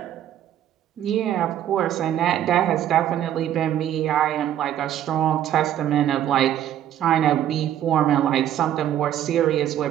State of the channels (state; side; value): quieter; left; 11.2 dB